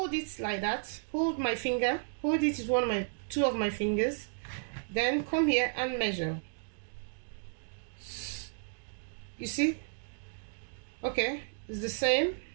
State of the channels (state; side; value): silent; left; digital silence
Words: it like that. Hold my finger. Hold it with two of my fingers. Then come here and measure. You see? Okay, it's the